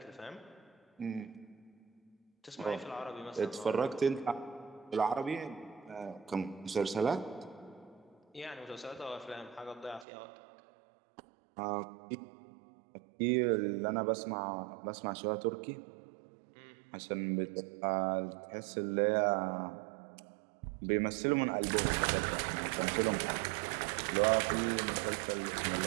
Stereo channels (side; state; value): left; drops out; at 10.1 s